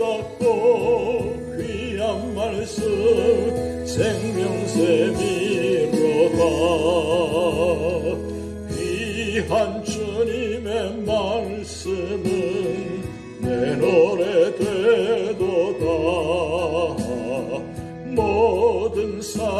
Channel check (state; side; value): identical; both; correlation 1.00